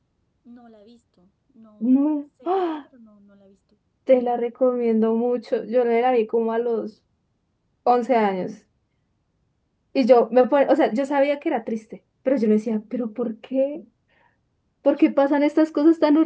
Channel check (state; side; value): identical; both; correlation 1.00